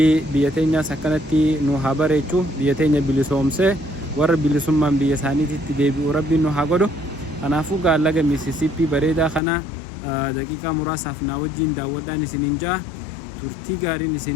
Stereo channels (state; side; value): drops out; right; at 9.4 s